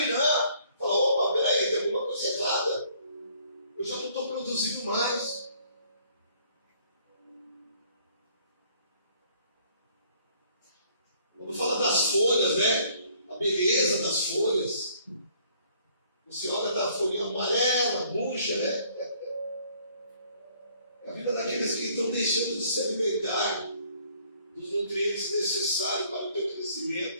Fala, opa, peraí, tem alguma coisa errada. Eu já não estou produzindo mais. Quando fala das folhas, né? A beleza das folhas. Você olha da folhinha amarela, murcha, né? É a vida daqueles que estão deixando de se alimentar dos nutrientes necessários para o teu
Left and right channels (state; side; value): inverted; both; correlation -0.61